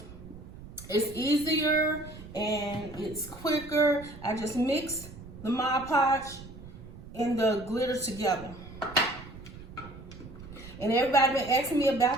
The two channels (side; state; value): right; noise; rumble, 16 dB below the sound